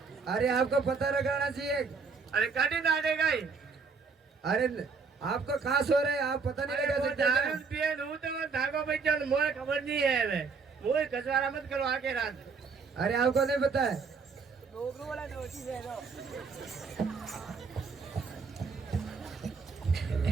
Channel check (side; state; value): left; quieter; 5.0 dB